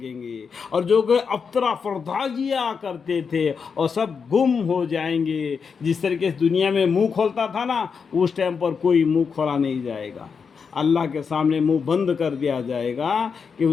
گے، اور جو کہ افطرا فرداجیاں کرتے تھے اور سب گم ہو جائیں گے۔ جس طریقے سے دنیا میں منہ کھولتا تھا نا، اس ٹائم پر کوئی منہ کھولا نہیں جائے گا، اللہ کے سامنے منہ بند کر دیا جائے گا کہ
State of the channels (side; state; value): right; quieter; 5.9 dB